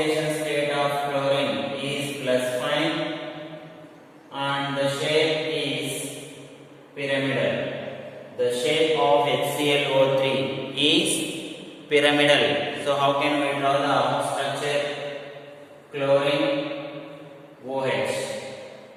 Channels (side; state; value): both; identical; correlation 1.00